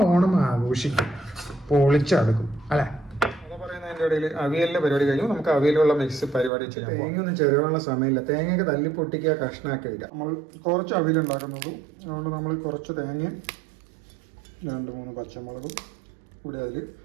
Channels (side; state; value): left; drops out; at 6.5 s